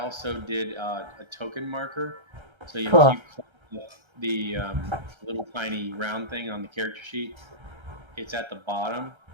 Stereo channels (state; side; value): late; left; 1.3 ms